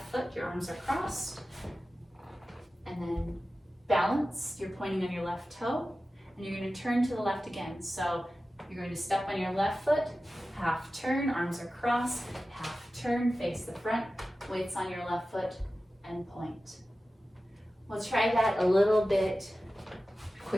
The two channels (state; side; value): normal; both; correlation 0.95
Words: foot, your arms are crossed, and then balance, you're pointing on your left toe, and you're going to turn to the left again. So you're going to step on your left foot, half turn, arms are crossed, half turn, face the front, weights on your left foot, and point. We'll try that a little bit